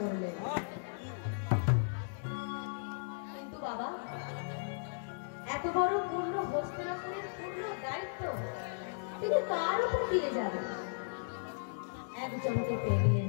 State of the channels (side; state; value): right; silent; digital silence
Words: কিন্তু বাবা এত বড় পূর্ণ হস্তিনাপুরের পূর্ণ দায়িত্ব তিনি কার উপর দিয়ে যাবেন? একজনকে পেলেন,